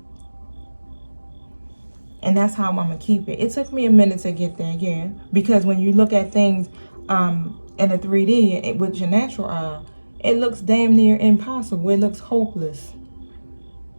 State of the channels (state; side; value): inverted; both; correlation -1.00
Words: And that's how I'm going to keep it. It took me a minute to get there, yeah. Because when you look at things in a 3D with your natural eye, it looks damn near impossible. It looks hopeless.